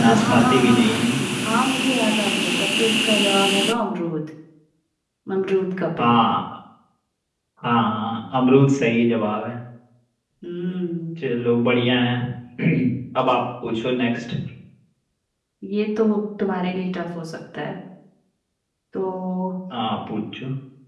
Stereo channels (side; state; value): both; identical; correlation 1.00